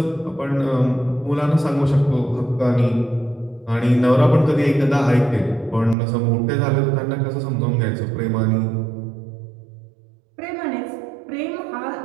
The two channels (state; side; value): drops out; left; at 6.0 s